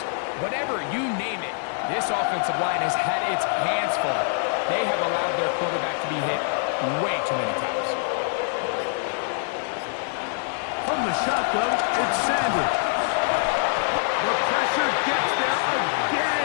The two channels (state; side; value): silent; right; digital silence